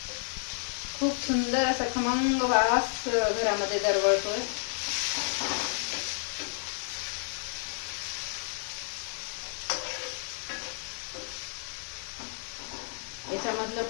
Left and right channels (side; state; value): right; silent; 57 dB below the other